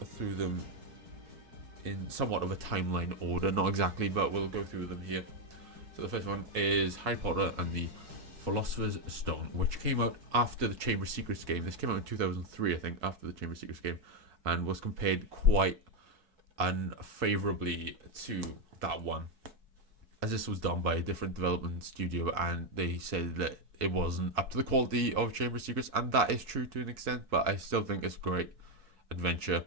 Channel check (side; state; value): left; late; 4.6 ms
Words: through them in somewhat of a timeline order, not exactly, but we'll go through them here. So the first one is Harry Potter and the Philosopher's Stone, which came out after the Chamber of Secrets game. This came out in 2003, I think, after the Chamber of Secrets game, and was compared quite unfavorably to that one, as this was done by a different development studio, and they said that it wasn't up to the quality of Chamber of Secrets, and that is true to an extent, but I still think it's a great adventure